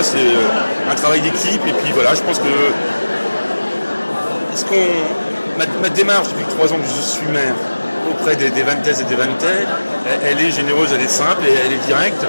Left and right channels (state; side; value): inverted; both; correlation -1.00